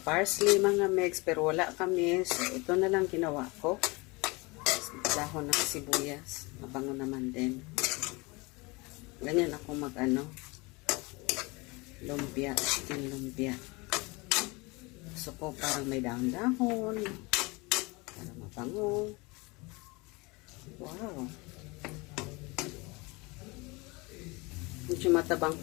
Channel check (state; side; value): quieter; right; 25.8 dB